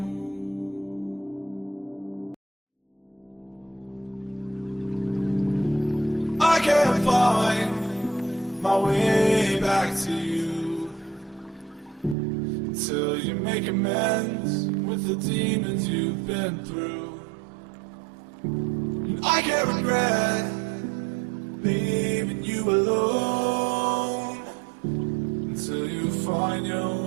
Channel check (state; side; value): drops out; left; at 12.2 s